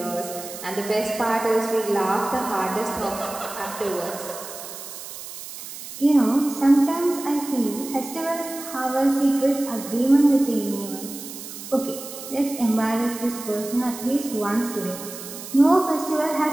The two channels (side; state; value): right; noise; hiss, 12 dB below the sound